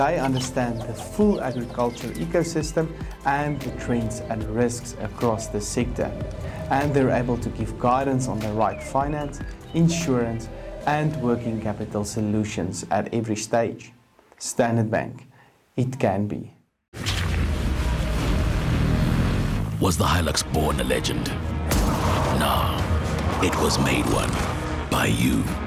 understand the full agriculture ecosystem and the trends and risks across the sector, and they're able to give guidance on the right finance, insurance, and working capital solutions at every stage. Standard Bank, it can be. Was the Hilux born a legend? No, it was made one by you.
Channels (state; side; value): identical; both; correlation 1.00